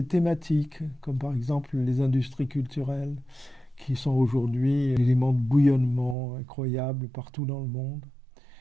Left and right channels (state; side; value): drops out; left; at 6.2 s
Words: thématiques, comme par exemple les industries culturelles, qui sont aujourd'hui un élément de bouillonnement incroyable partout dans le monde.